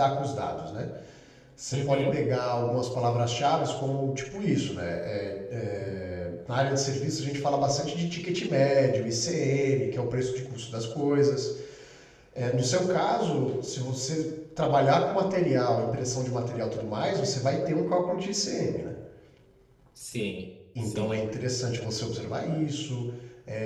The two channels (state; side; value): identical; both; correlation 1.00